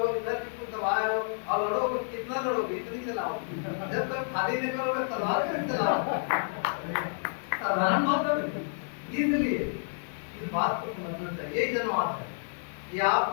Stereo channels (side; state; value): right; silent; digital silence